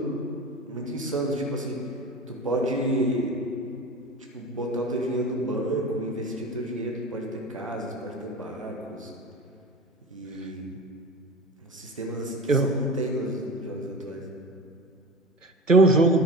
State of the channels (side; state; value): both; normal; correlation 0.32